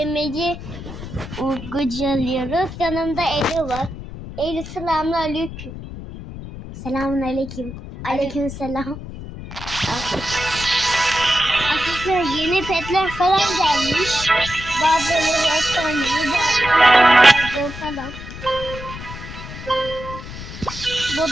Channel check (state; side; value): noise; left; rumble, 11 dB below the sound